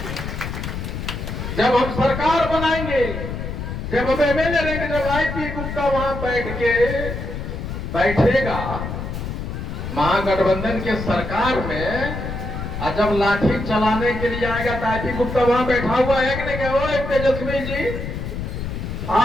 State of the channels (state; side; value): noise; left; rumble, 6 dB below the sound